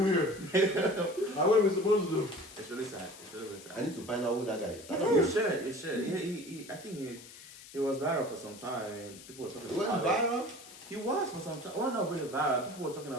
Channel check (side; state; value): left; noise; hiss, 17 dB below the sound